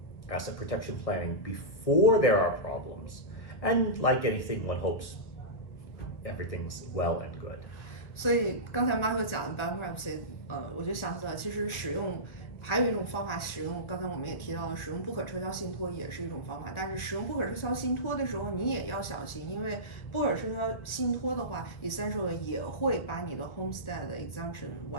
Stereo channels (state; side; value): late; right; 1.9 ms